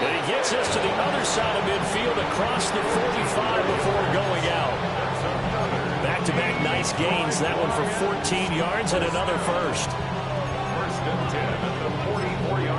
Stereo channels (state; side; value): identical; both; correlation 1.00